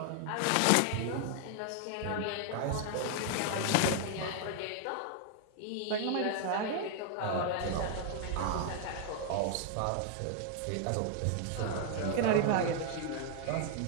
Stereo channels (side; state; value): both; different; correlation 0.00